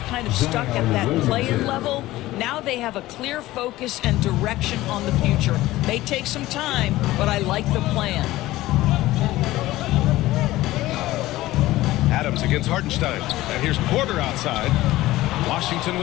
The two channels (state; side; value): quieter; right; 16.9 dB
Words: kind of stuck at that play-in level. Now they have a clear focus and direction on the future. May take some time, but I like the plan. Adams against Hartenstein. And here's Porter outside. Washington